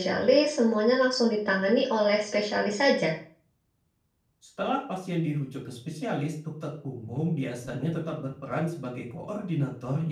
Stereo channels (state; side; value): identical; both; correlation 1.00